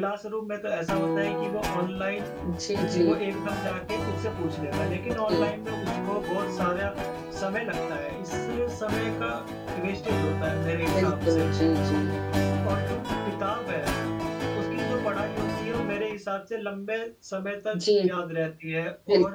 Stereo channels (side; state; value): both; identical; correlation 1.00